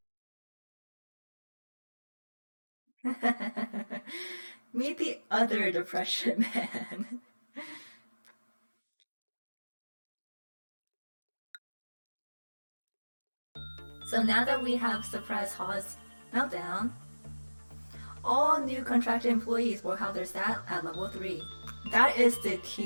Meet the other depression man. So now that we have suppressed Haw's meltdown, all new contracted employees will have their stat at level 3. That is the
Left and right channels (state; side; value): inverted; both; correlation -1.00